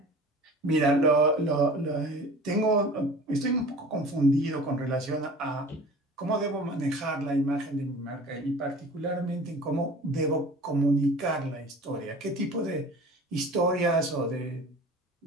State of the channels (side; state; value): both; normal; correlation 0.42